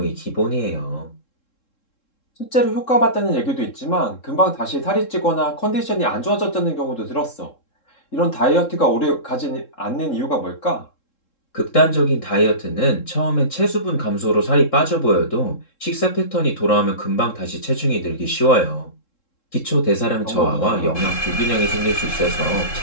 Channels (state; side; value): late; right; 3.7 ms